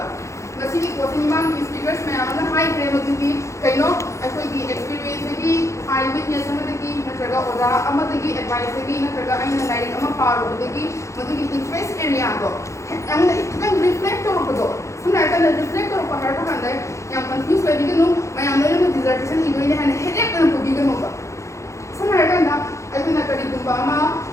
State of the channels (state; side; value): late; right; 0.14 ms